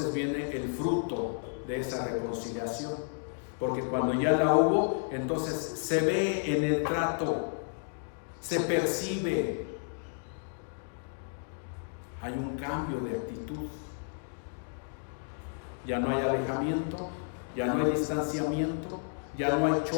viene el fruto de esa reconciliación. Porque cuando ya la hubo, entonces se ve en el trato, se percibe. Hay un cambio de actitud. Ya no hay alejamiento, ya no hay distanciamiento, ya no hay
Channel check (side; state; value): right; silent; digital silence